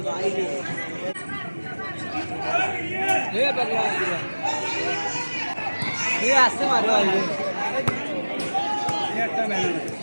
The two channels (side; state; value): both; inverted; correlation -1.00